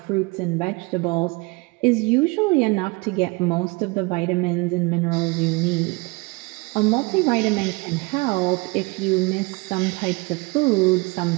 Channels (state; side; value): quieter; left; 26.3 dB